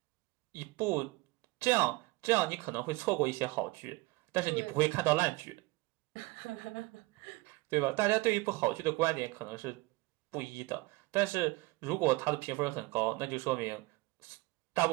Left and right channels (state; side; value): quieter; left; 22.4 dB